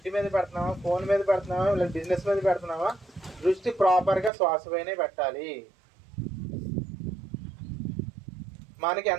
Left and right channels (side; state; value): left; drops out; at 4.3 s